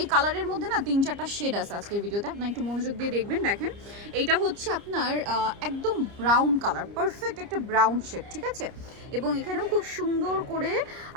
কালারের মধ্যে না 3-4টা শেড আছে আজকের ভিডিওতে, আপনার একটু মনোযোগ দিয়ে দেখবেন। দেখেন, এইটা হচ্ছে আপনার একদম ব্রাউন কালার, পারফেক্ট একটা ব্রাউন শেড, ঠিক আছে। এবং এখানেও খুব সুন্দর করে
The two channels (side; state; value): left; late; 30 ms